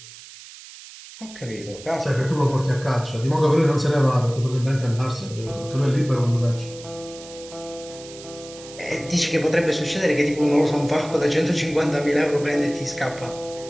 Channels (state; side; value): noise; right; hiss, 17 dB below the sound